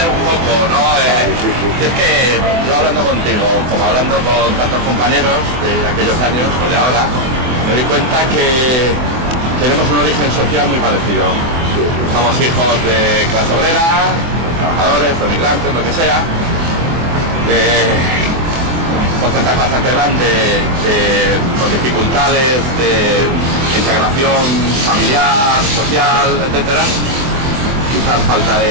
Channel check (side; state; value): left; late; 24 ms